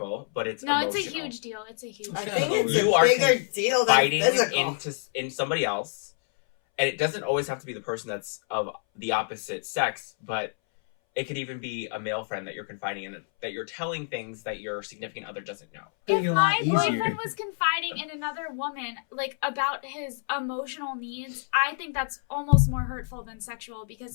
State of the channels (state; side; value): silent; right; 60 dB below the other